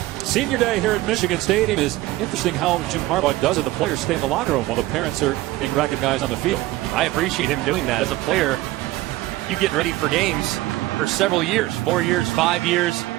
Senior day here at Michigan Stadium. Is interesting how Jim Harbaugh does it. The players stay in the locker room while the parents are being recognized on the field. I appreciate him doing that. As a player, you get ready for games for several years, 4 years, 5 years.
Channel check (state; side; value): quieter; left; 17.5 dB